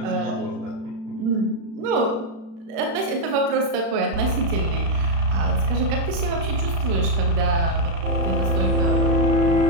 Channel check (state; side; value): late; left; 36 ms